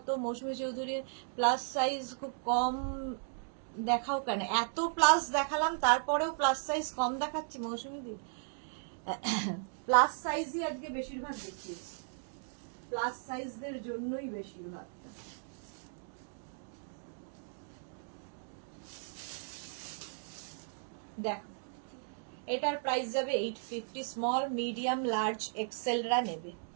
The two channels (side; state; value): left; silent; digital silence